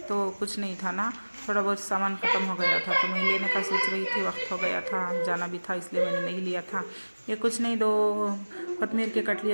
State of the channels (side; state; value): both; inverted; correlation -1.00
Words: तो कुछ नहीं था ना, थोड़ा बहुत सामान ख़त्म हो गया था, तो मैं लेने का सोच रही थी, वक्त हो गया था, जाना भी था, इसलिए मैंने नहीं लिया था। ये कुछ नहीं, 2 कोतमीर के कट